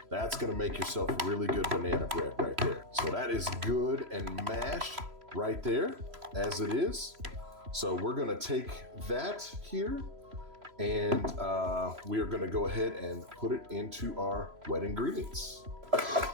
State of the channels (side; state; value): left; late; 3.0 ms